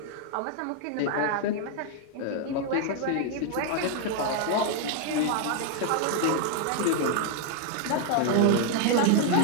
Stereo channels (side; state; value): both; different; correlation 0.00